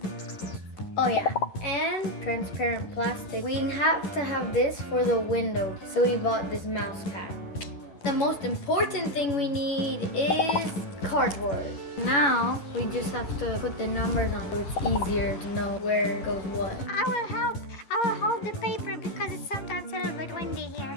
Oh yeah, and transparent plastic. We have to have this for the window, so we bought this mouse pad. The most important thing we need is cardboard. Now we just have to put the numbers on so it's easier to know where goes what. I will help. I will hold the paper because it's sometimes a little bit windy here.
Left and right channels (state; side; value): late; right; 11 ms